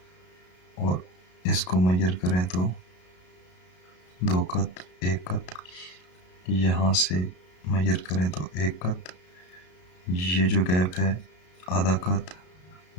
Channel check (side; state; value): right; late; 33 ms